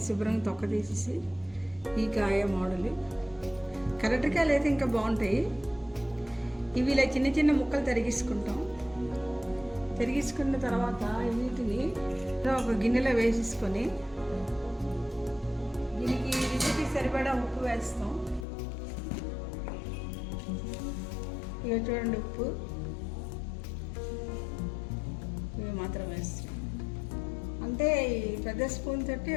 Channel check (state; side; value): drops out; right; at 18.4 s